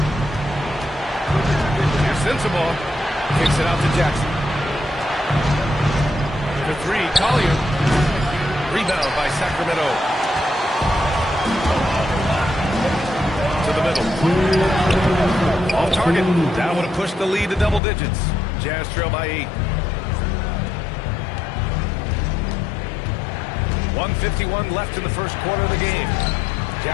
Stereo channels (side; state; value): right; drops out; at 17.8 s